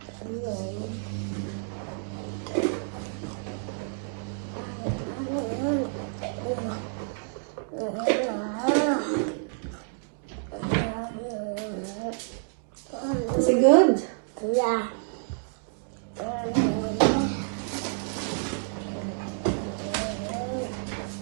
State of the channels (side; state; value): left; silent; 59 dB below the other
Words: Is it good? Yeah.